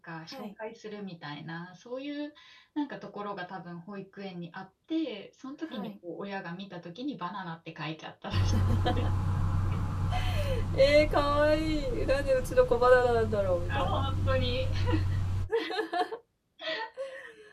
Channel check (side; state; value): both; identical; correlation 1.00